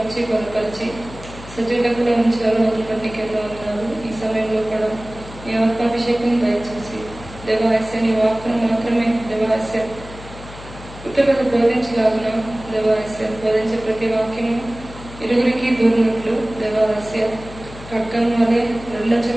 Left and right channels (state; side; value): noise; left; hum, 15 dB below the sound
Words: బలపరిచి సజీవులకు ఉంచారు. అతను బట్టి కేవలం ఉన్నాడు. ఈ సమయంలో కూడా నీ ఆత్మాభిషేకం దయచేసి దేవాలయ నీ వాక్కును మాత్రమే దేవాలయ ఇతరులకు బోధించలాగున దేవాలయ బోధించే ప్రతి వాక్యము ఇరుగురికి దూరినట్లు దేవాలయ ఖడ్గం వలె